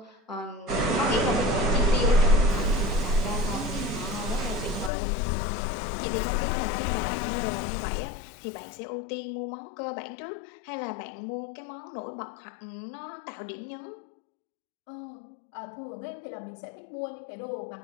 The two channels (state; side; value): drops out; right; at 4.9 s